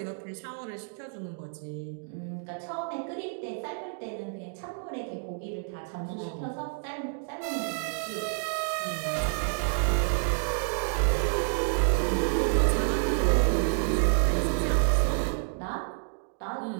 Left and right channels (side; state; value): left; silent; 58 dB below the other